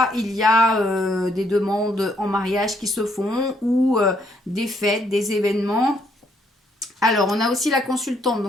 il y a des demandes en mariage qui se font ou des fêtes, des événements. Alors, on a aussi la consultante,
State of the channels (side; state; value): both; normal; correlation 0.71